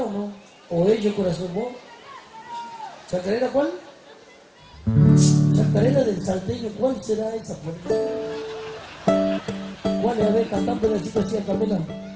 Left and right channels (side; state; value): both; identical; correlation 1.00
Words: o no? ¿O ellos, corazón, vos? ¿Chacarera cuál? Chacarera del Salteño, ¿cuál será esa? Por Dios? ¿Cuál es? A ver, canta un pedacito así a capela.